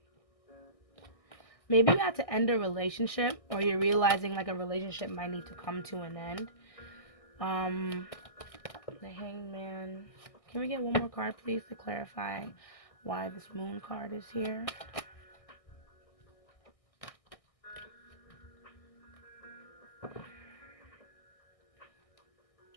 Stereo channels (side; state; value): right; late; 1.6 ms